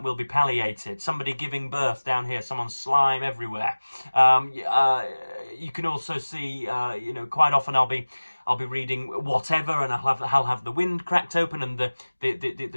palliated. Somebody giving birth down here, someone's slime everywhere. You can also see, quite often I'll be reading whatever, and I'll have the wind cracked open, and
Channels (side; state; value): both; inverted; correlation -1.00